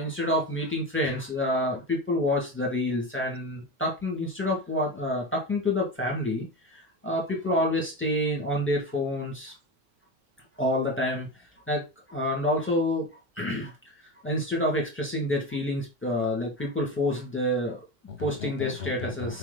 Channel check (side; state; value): both; normal; correlation 0.23